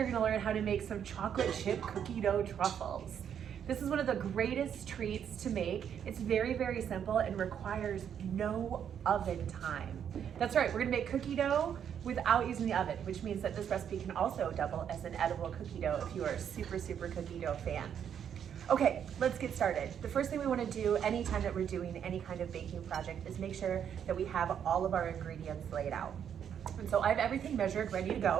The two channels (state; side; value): quieter; left; 8.6 dB